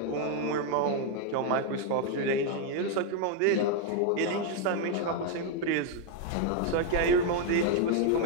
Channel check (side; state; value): both; different; correlation 0.01